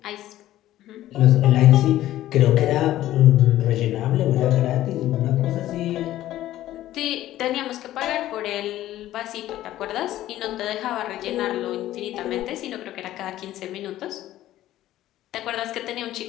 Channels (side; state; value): right; quieter; 14.0 dB